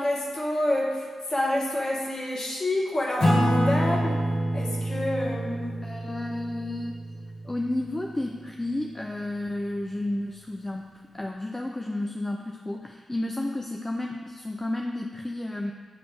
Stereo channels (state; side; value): normal; both; correlation 0.94